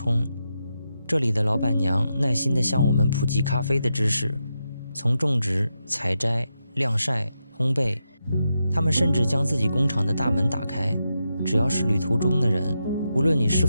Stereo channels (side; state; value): both; inverted; correlation -0.86